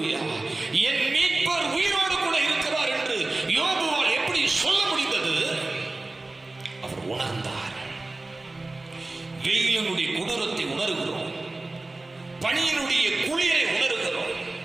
என் மீட்பர் உயிரோடு கூட இருக்கிறார் என்று யோபுவால் எப்படி சொல்ல முடிந்தது? அவர் உணர்ந்தார். வெயிலினுடைய கொடூரத்தை உணர்கிறோம், பனியினுடைய குளிரை உணர்கிறோம்,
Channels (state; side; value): quieter; left; 3.0 dB